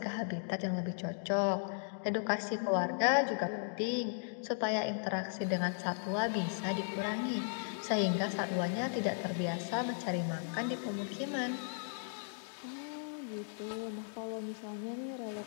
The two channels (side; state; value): right; silent; digital silence